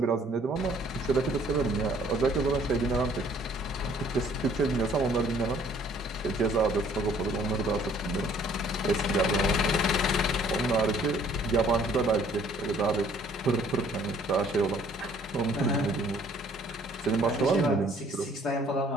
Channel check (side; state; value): both; normal; correlation 0.59